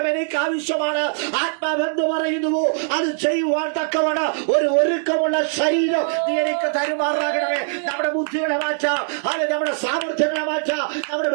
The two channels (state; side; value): silent; left; digital silence